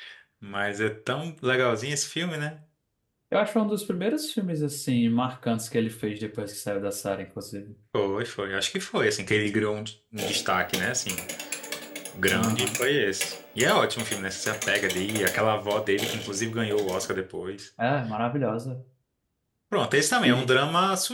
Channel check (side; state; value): both; identical; correlation 1.00